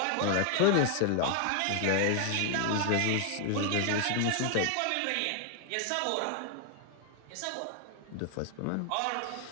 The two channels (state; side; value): different; both; correlation 0.00